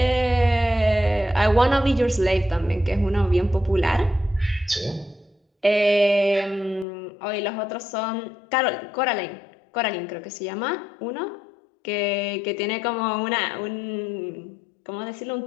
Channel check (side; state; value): right; drops out; at 6.9 s